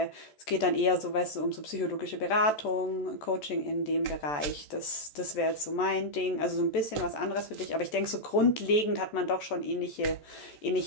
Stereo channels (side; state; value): right; late; 14 ms